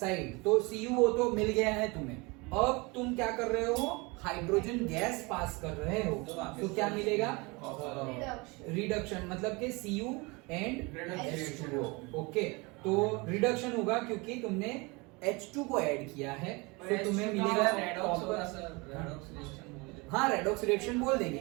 तो CuO तो मिल गया है तुम्हें, अब तुम क्या कर रहे हो? हाइड्रोजन गैस पास कर रहे हो, तो क्या मिलेगा? रिडक्शन, मतलब कि Cu एंड H2O। ओके, तो रिडक्शन होगा क्योंकि तुमने H2 को ऐड किया है, तो तुम्हें मिलेगा हाँ रेडॉक्स रिएक्शन बोल देंगे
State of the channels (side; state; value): left; quieter; 26.6 dB